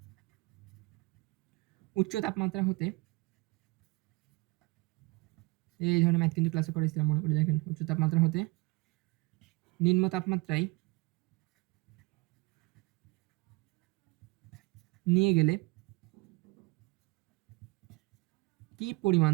উচ্চ তাপমাত্রা হতে, এই ধরনের ম্যাথ কিন্তু ক্লাসে করেছিলাম মনে করি, দেখেন উচ্চ তাপমাত্রা হতে নিম্ন তাপমাত্রায় নিয়ে গেলে কি পরিমাণ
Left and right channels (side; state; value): left; quieter; 24.1 dB